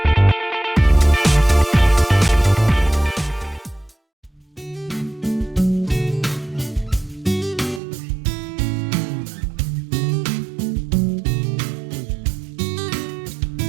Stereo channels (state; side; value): drops out; left; at 7.8 s